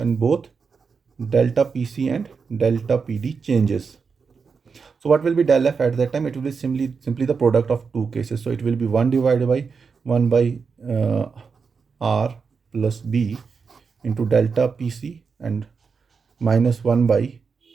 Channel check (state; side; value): quieter; left; 5.4 dB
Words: both delta pc and delta pd changes. So what will be del f at that time? It will be simply the product of two cases. So it will be 1 divided by 1 by r plus b into delta pc and minus 1 by